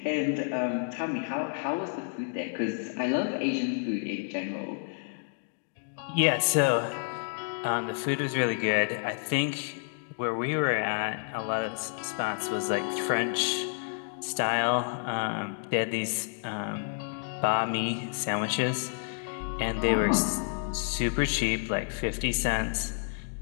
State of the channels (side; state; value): right; silent; digital silence